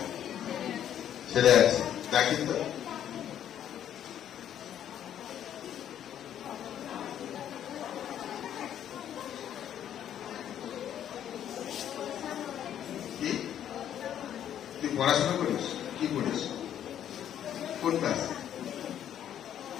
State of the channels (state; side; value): quieter; right; 10.3 dB